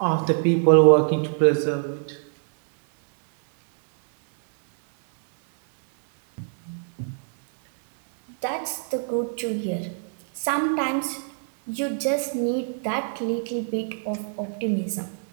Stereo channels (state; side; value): silent; left; 62 dB below the other